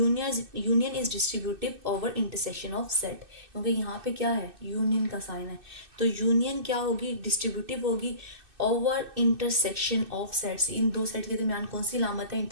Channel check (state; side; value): late; left; 2.6 ms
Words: is distributive over intersection of set, क्योंकि यहाँ पे क्या है, यूनियन का साइन है, तो यूनियन क्या होगी, डिस्ट्रीब्यूटिव होगी ओवर इंटरसेक्शन ऑफ सेट्स। इन दो सेट के दरमियान कौन सी लामत है,